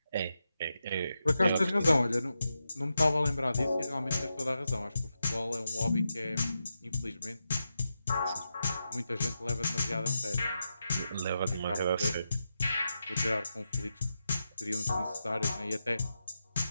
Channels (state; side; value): inverted; both; correlation -0.88